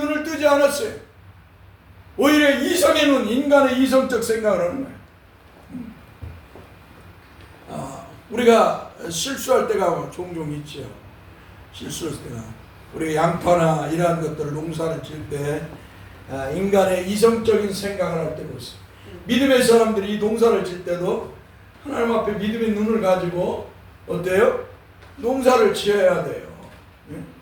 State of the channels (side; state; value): both; identical; correlation 1.00